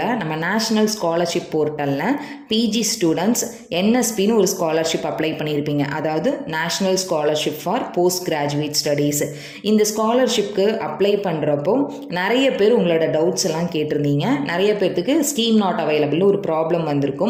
நம்ம நேஷ்னல் ஸ்காலர்ஷிப் போர்ட்டலில் பிஜி ஸ்டூடெண்ட்ஸ் என்எஸ்பின்னு ஒரு ஸ்காலர்ஷிப் அப்ளை பண்ணியிருப்பீங்க. அதாவது national scholarship for post graduate studies. இந்த ஸ்காலர்ஷிப்க்கு அப்ளை பண்ணுறப்போ நிறைய பேர் உங்களோட டவுட்ஸ் எல்லாம் கேட்டிருந்தீங்க. நிறைய பேர்த்துக்கு ஸ்கீம் நாட் அவைலபிள் ஒரு ப்ராப்ளம்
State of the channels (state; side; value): identical; both; correlation 1.00